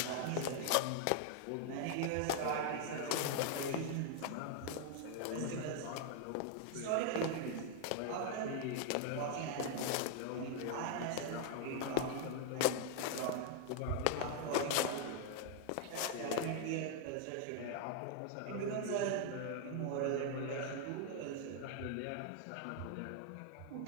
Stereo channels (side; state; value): both; different; correlation 0.00